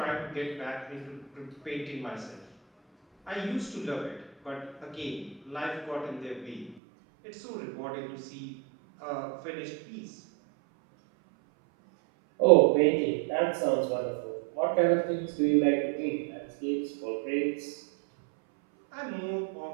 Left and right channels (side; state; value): left; drops out; at 6.8 s